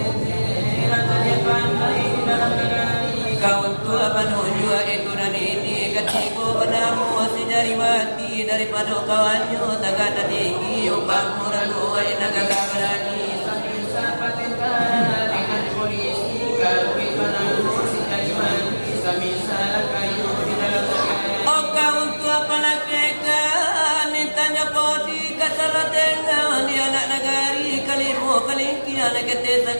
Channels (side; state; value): both; inverted; correlation -1.00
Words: kau tua penuju itu dan ini ketiku padamu si jari mati daripada kawannya tagata tinggi upang murah dua inaga berani dengan polisi kawin padamu si jari mati samisa kayu di dalam negeri oh kau tua palakekan nintanya podi kasalah dengan di anak negari kalimu kalingki anak kete